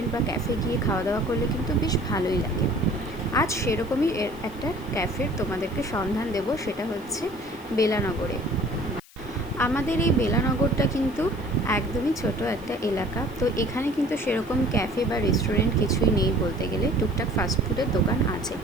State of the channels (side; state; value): left; noise; hiss, 25 dB below the sound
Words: বা ক্যাফে গিয়ে খাওয়া দাওয়া করলে কিন্তু বেশ ভালোই লাগে। আজ সেরকমই একটা ক্যাফের তোমাদেরকে সন্ধান দেব, সেটা হচ্ছে বেলানগরে। আমাদের এই বেলানগরটা কিন্তু একদমই ছোট একটা এলাকা। তো এখানে কিন্তু সেরকম ক্যাফে বা রেস্টুরেন্ট কিছুই নেই বলতে গেলে, টুকটাক ফাস্টফুডের দোকান আছে।